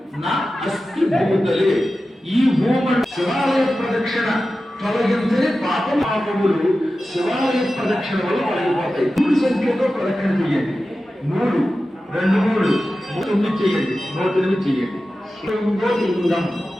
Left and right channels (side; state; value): both; normal; correlation 0.94